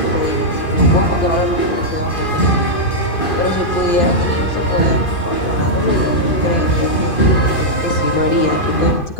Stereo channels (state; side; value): late; right; 2.5 ms